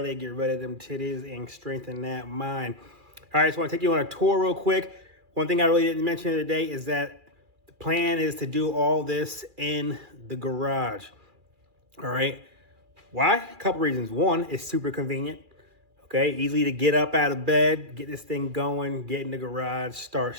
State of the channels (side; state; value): left; late; 2.4 ms